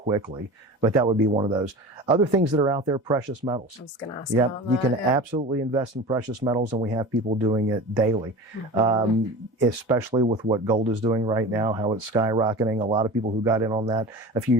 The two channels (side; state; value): both; normal; correlation 0.34